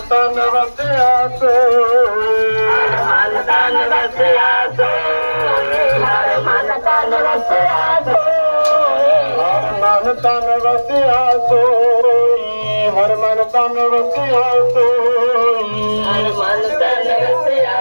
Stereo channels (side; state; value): both; inverted; correlation -1.00